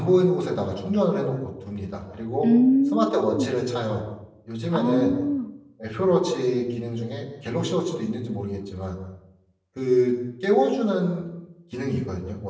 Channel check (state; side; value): identical; both; correlation 1.00